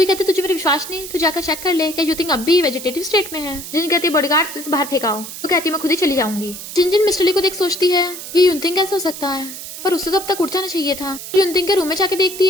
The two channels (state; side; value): noise; right; hiss, 10 dB below the sound